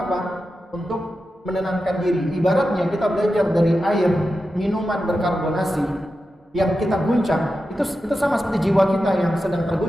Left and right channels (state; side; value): normal; both; correlation 0.91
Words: Untuk menenangkan diri. Ibaratnya kita belajar dari air minuman berkarbonasi yang kita guncang, itu sama seperti jiwa kita yang sedang